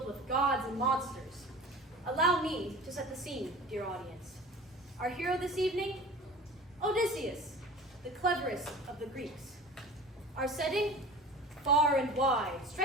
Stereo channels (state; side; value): normal; both; correlation 0.39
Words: with gods and monsters. Allow me to set the scene, dear audience. Our hero this evening? Odysseus, the cleverest of the Greeks. Our setting? Far and wide,